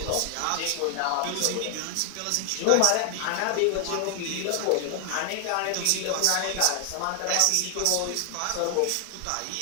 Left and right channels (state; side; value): different; both; correlation 0.00